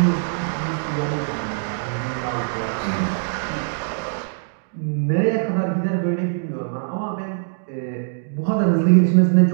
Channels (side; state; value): left; silent; digital silence